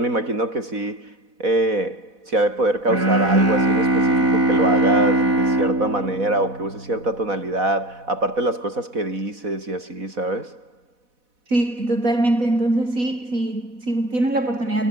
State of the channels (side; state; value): left; late; 4.1 ms